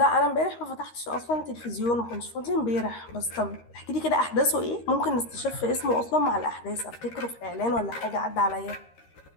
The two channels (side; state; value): right; late; 13 ms